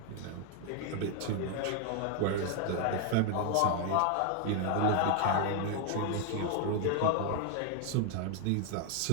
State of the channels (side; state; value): both; different; correlation 0.00